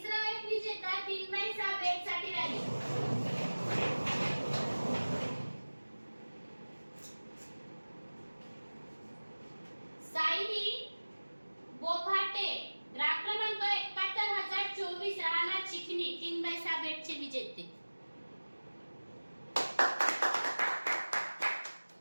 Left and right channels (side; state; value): both; inverted; correlation -1.00